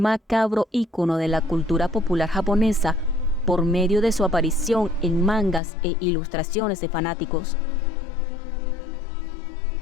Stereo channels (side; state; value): right; drops out; at 5.6 s